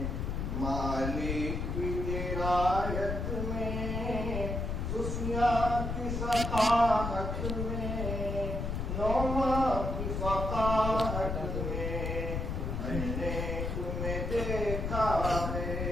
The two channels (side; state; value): left; noise; rumble, 2 dB below the sound